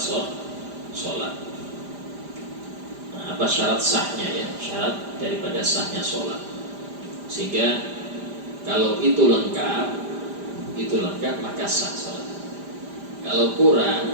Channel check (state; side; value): late; left; 5.0 ms